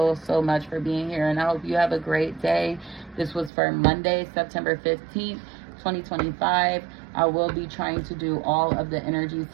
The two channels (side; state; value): left; drops out; at 3.5 s